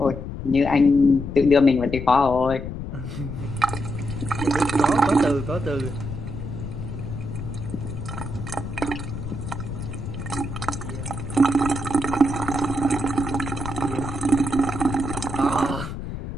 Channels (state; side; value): noise; left; rumble, 7 dB below the sound